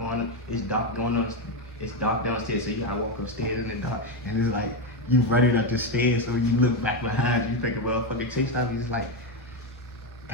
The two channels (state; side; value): normal; both; correlation 0.09